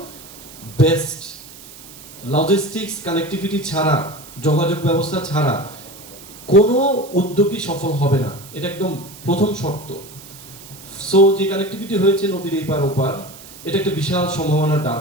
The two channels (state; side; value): noise; right; hiss, 18 dB below the sound